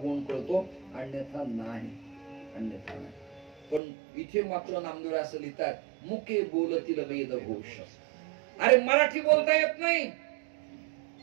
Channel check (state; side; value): drops out; left; at 3.8 s